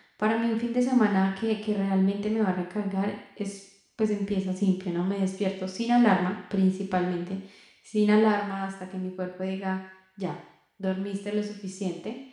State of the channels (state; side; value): identical; both; correlation 1.00